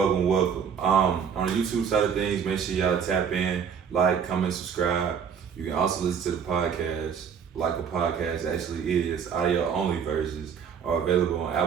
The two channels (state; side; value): quieter; left; 7.2 dB